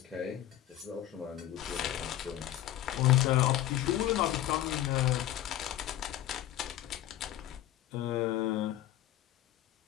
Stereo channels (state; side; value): quieter; right; 13.0 dB